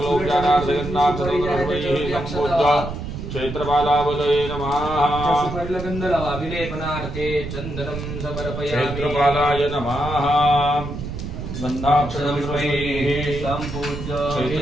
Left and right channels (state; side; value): noise; right; rumble, 7 dB below the sound